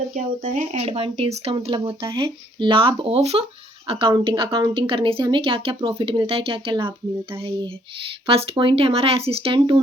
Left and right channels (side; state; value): both; normal; correlation 0.65